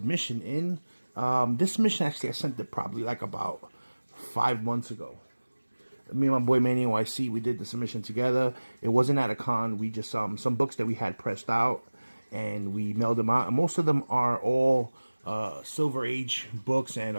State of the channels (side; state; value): both; inverted; correlation -1.00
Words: in. This submission actually I sent it probably like about 5 months ago. Me and my boy Manny NYC, we did the submission together. It wasn't at a con. We just some books that we had pressed out, and we mailed them out. And most of them are all Silver Age books and